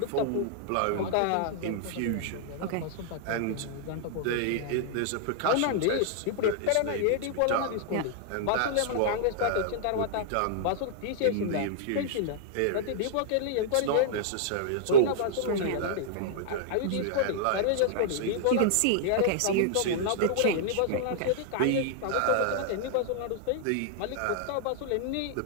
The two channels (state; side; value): different; both; correlation -0.01